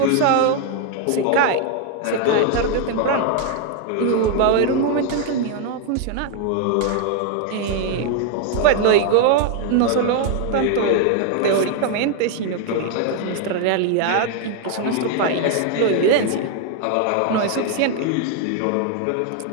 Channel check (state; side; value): different; both; correlation 0.00